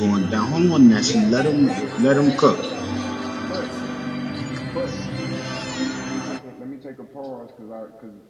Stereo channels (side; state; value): both; identical; correlation 1.00